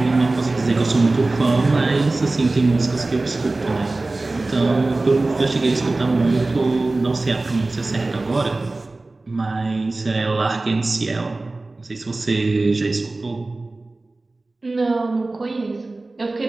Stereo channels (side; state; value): left; quieter; 3.2 dB